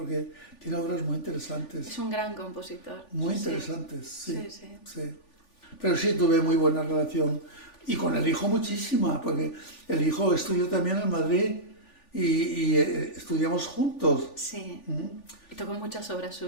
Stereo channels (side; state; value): right; late; 3.4 ms